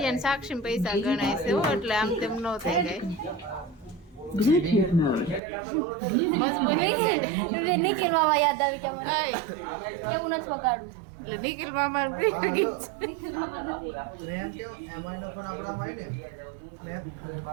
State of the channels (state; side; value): drops out; left; at 5.4 s